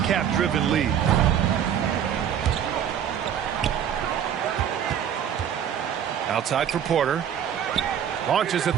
league. Outside for Porter. Launches a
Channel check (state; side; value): quieter; left; 9.1 dB